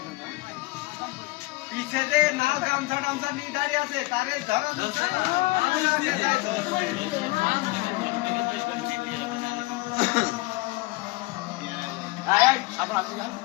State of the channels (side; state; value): right; quieter; 22.5 dB